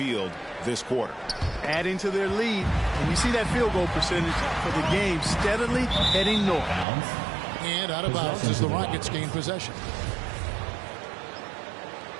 this quarter. Adding to their lead, and you see that field goal percentage for the game steadily heading north. And out of bounds as the Rockets gain possession.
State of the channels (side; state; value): left; drops out; at 6.9 s